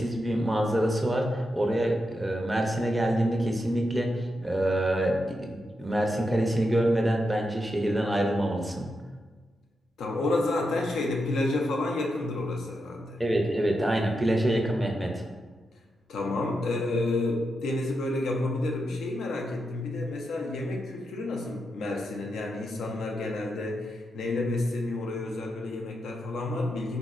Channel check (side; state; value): both; normal; correlation 0.86